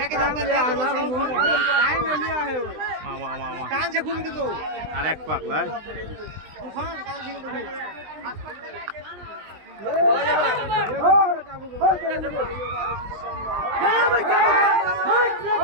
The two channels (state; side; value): late; left; 20 ms